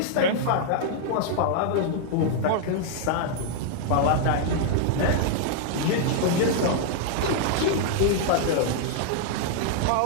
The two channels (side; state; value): both; different; correlation 0.00